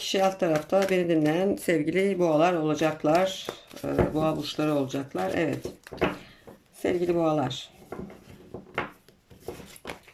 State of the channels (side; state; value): both; identical; correlation 1.00